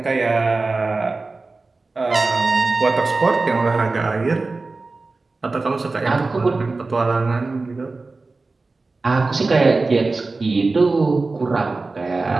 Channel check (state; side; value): quieter; left; 3.6 dB